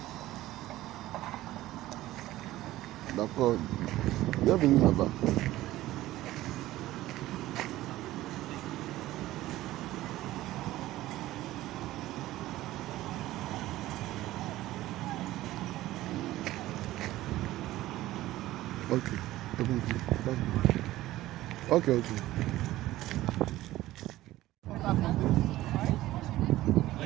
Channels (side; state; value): left; quieter; 15.9 dB